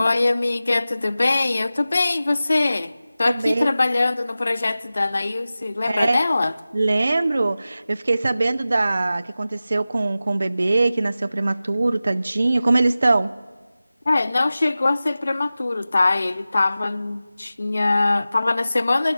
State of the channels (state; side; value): inverted; both; correlation -0.95